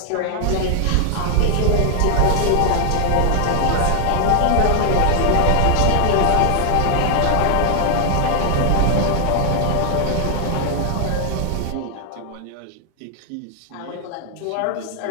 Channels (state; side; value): different; both; correlation 0.00